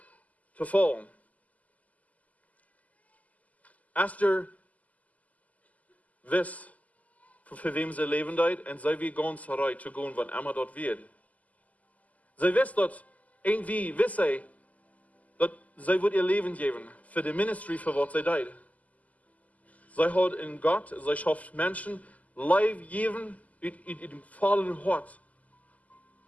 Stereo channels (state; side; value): late; right; 0.075 ms